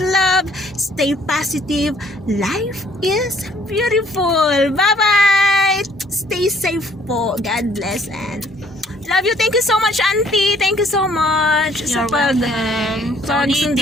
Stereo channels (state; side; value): normal; both; correlation 0.61